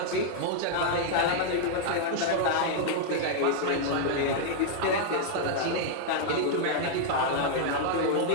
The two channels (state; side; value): different; both; correlation -0.01